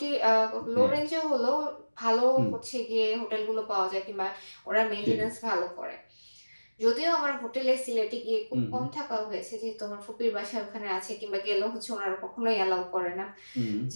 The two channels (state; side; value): inverted; both; correlation -1.00